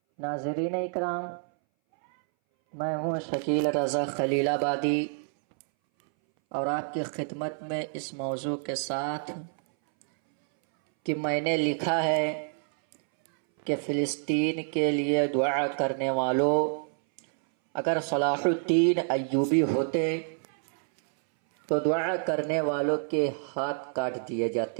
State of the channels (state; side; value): silent; left; 59 dB below the other